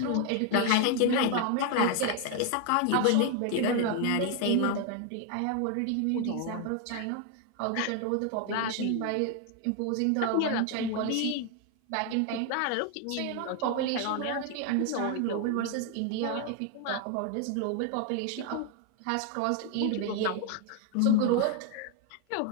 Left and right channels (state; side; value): different; both; correlation 0.01